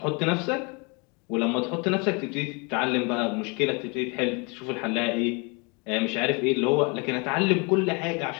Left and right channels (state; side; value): quieter; right; 31.7 dB